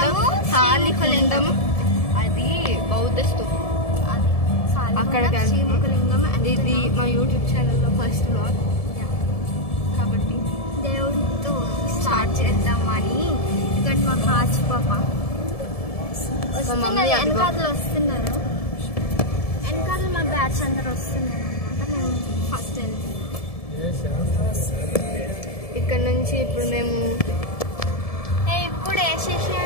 అది బౌద్ధ స్తూపం. అక్కడికి శ్రీముఖలింగం. ఇది మా యూట్యూబ్ ఛానల్లో ఫస్ట్ వ్లాగ్ కాబట్టి దేవుడితో స్టార్ట్ చేద్దామని. ఇక్కడ మా కాచి పాప వెనకాతలు వస్తున్నారు, వెనకాతలు మా బ్యాచ్ అందరు వస్తున్నారు అనమాట. మేము ఫస్ట్ వెళ్తున్నాం. ఇక్కడ నుంచి ఇప్పుడు మేము ఇప్పుడు వేసేసి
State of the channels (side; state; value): right; late; 1.7 ms